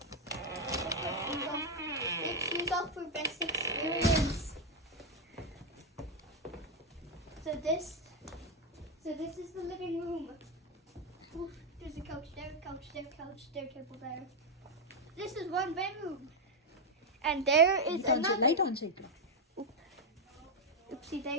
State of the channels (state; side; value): normal; both; correlation 0.02